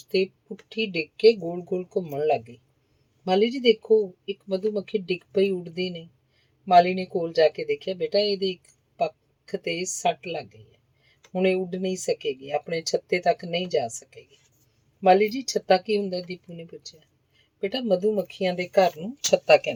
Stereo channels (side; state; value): both; identical; correlation 1.00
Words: ਤੇ ਪੁੱਠੀ ਡਿੱਗ ਕੇ ਗੋਲ ਗੋਲ ਘੁੰਮਣ ਲੱਗ ਗਈ। ਮਾਲੀ ਜੀ ਦੇਖੋ, ਇੱਕ ਮਧੂਮੱਖੀ ਡਿੱਗ ਪਈ, ਉੱਡਦੀ ਨਹੀਂ। ਮਾਲੀ ਨੇ ਕੋਲ ਜਾ ਕੇ ਦੇਖਿਆ। ਬੇਟਾ, ਇਹਦੇ ਇੱਕ ਪੱਖ ਤੇ ਸੱਟ ਲੱਗ ਗਈ ਹੈ। ਹੁਣ ਇਹ ਉੱਡ ਨਹੀਂ ਸਕੇਗੀ, ਆਪਣੇ ਛੱਤੇ ਤੱਕ ਨਹੀਂ ਜਾ ਸਕੇਗੀ। ਮਾਲੀ ਜੀ, ਛੱਤਾ ਕੀ ਹੁੰਦਾ? ਦੀਪੂ ਨੇ ਪੁੱਛਿਆ। ਬੇਟਾ, ਮਧੂਮੱਖੀਆਂ ਦੇ ਘਰ ਨੂੰ ਛੱਤਾ